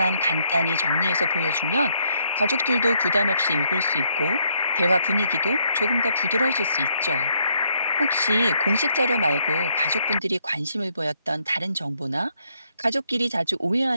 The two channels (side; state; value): both; inverted; correlation -0.73